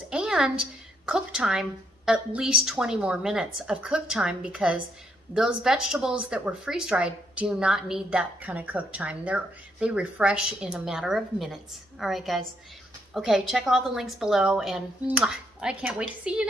and cook time, at least 20 more minutes of cook time, because those vegetables that were freeze-dried do not need that kind of cook time. They refresh in a matter of minutes. All right, guys. Okay, check all the links below, and I can't wait to see you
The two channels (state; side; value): normal; both; correlation 0.73